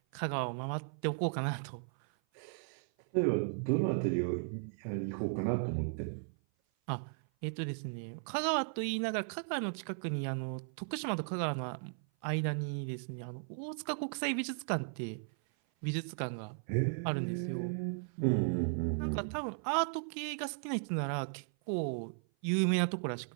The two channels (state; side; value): silent; left; 54 dB below the other